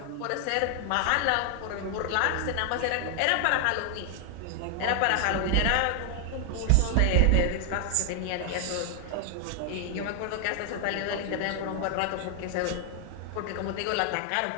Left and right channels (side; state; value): both; different; correlation 0.00